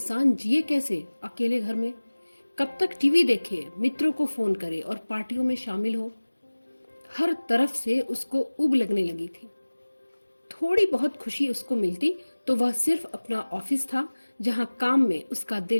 जिए कैसे अकेले घर में। कब तक टीवी देखे, मित्रों को फोन करे और पार्टियों में शामिल हो। हर तरफ से उसको उब लगने लगी थी। थोड़ी बहुत खुशी उसको मिलती तो वह सिर्फ अपना ऑफिस था जहां काम में उसका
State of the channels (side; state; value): both; inverted; correlation -1.00